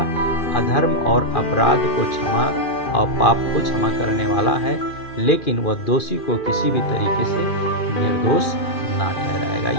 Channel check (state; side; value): late; right; 2.4 ms